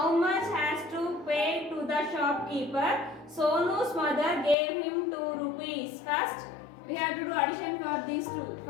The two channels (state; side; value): drops out; right; at 4.5 s